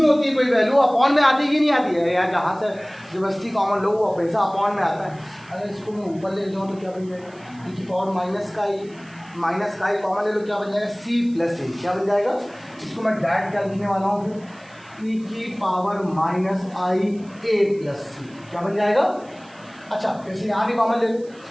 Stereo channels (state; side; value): noise; right; hiss, 28 dB below the sound